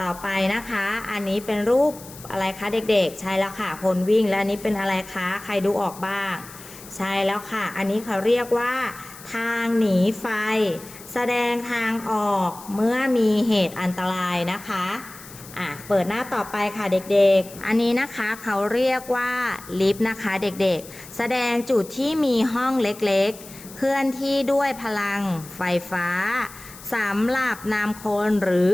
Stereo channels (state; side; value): noise; left; hiss, 17 dB below the sound